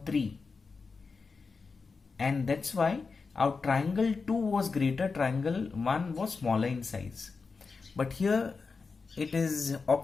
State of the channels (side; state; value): right; quieter; 4.6 dB